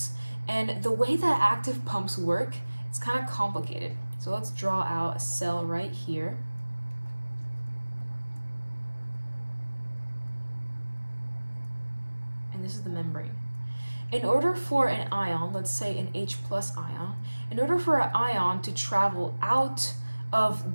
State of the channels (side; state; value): both; inverted; correlation -1.00